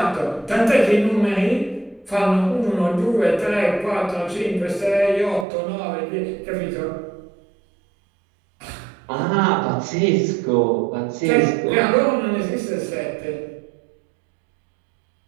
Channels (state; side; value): drops out; left; at 5.5 s